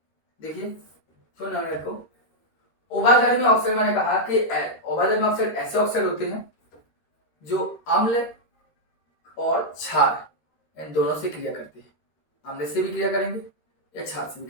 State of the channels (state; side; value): late; right; 13 ms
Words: देखिए सुनिए को, उभयधर्मी ऑक्साइड मैंने कहा कि उभयधर्मी ऑक्साइड ऐसे ऑक्साइड होते हैं जो अम्ल और क्षार इन दोनों से क्रिया करते हैं। अम्ल से भी क्रिया करेंगे या क्षार से भी